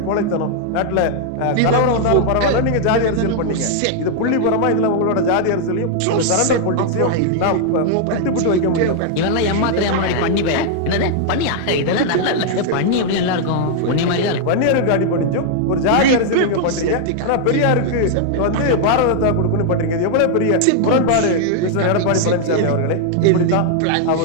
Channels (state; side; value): different; both; correlation 0.00